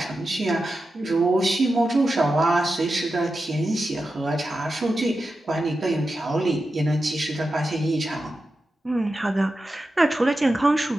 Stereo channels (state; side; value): normal; both; correlation 0.91